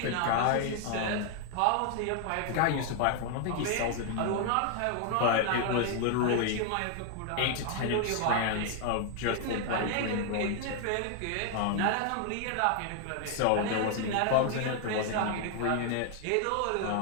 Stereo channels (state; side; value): different; both; correlation 0.00